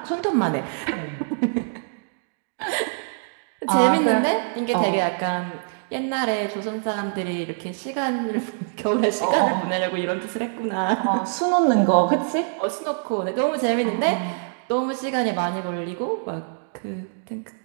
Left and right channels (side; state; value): left; silent; digital silence